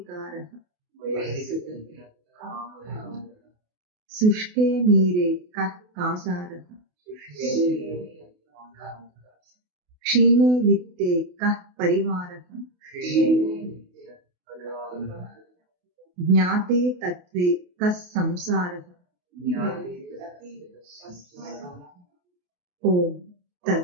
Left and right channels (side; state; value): left; late; 28 ms